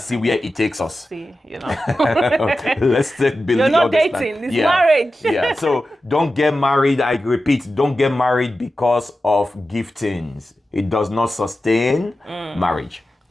where it takes us. Let's believe. You're not dating, it's marriage. So don't get married, I repeat, don't get married because of giftings. It does not sustain marriage.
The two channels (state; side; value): normal; both; correlation 0.93